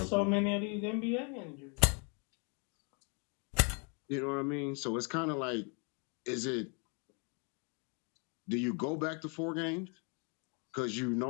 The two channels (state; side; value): quieter; right; 37.0 dB